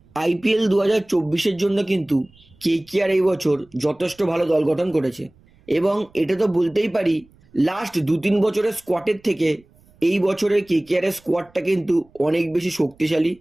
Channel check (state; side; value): noise; right; rumble, 30 dB below the sound